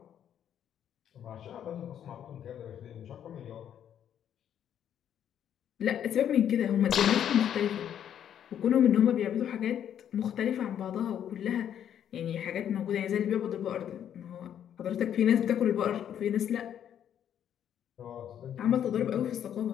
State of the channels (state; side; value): quieter; right; 9.7 dB